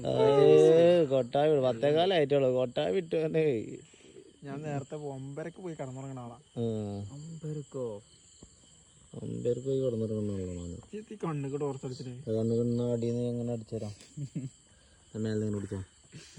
കൊട്ടായി 10 കാലമായിട്ടുള്ളൂ. കൊട്ടായി വിട്ടു. ഞാൻ നേരത്തെ 9:00 പോയി കടന്നുറങ്ങണ ആളാ. 9:00 പോയി കിടന്നിറങ്ങുന്ന കണ്ണുകണ്ണ അടിന്ന് എങ്ങനെ അടിച്ചുതരാം? മേലെ കുടിച്ചോ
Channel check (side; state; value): both; identical; correlation 1.00